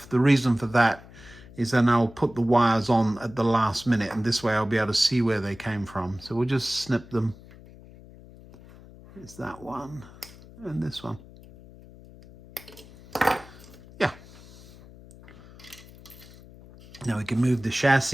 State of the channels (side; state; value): left; noise; hum, 20 dB below the sound